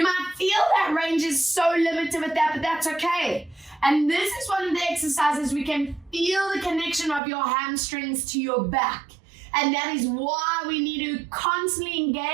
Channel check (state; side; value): drops out; left; at 7.2 s